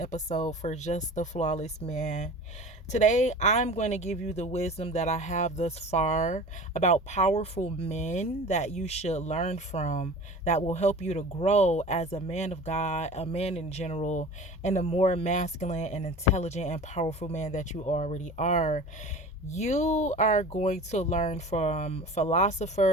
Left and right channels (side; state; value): both; normal; correlation 0.38